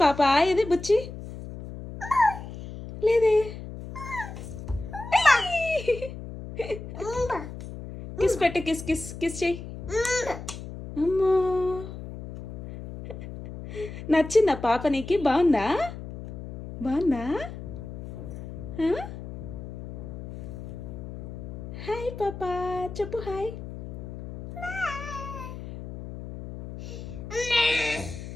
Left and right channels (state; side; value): noise; left; hum, 11 dB below the sound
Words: పాప ఏది బుచ్చి లేదే. కిస్ పెట్టు కిస్ కిస్ కిస్ చెయ్యి. అమ్మా నచ్చిందా పాప నీకు? బాగుందా బాగుందా? హాయ్ పాప చెప్పు హాయ్.